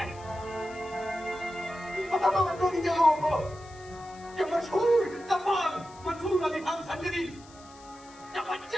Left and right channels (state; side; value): noise; left; hiss, 23 dB below the sound